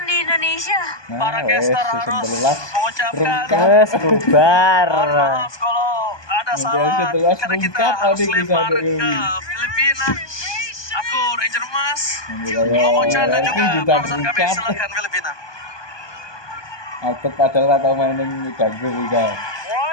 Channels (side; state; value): right; late; 1.2 ms